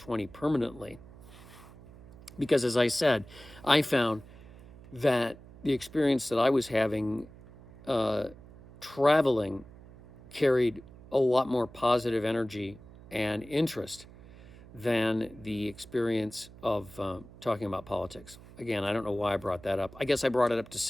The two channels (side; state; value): right; noise; hum, 20 dB below the sound